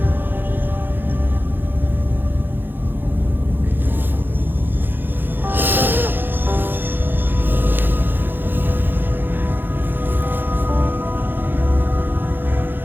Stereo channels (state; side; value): late; left; 0.096 ms